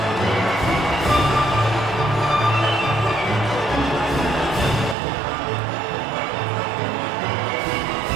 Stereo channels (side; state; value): left; drops out; at 5.0 s